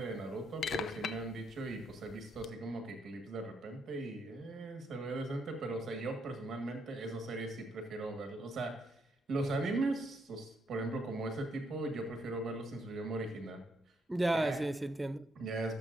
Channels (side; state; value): both; normal; correlation 0.75